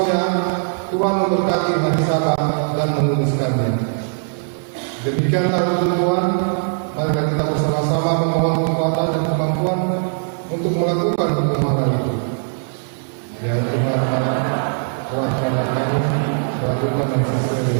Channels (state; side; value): silent; left; digital silence